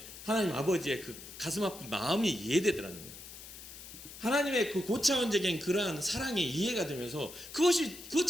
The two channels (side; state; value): left; noise; hiss, 14 dB below the sound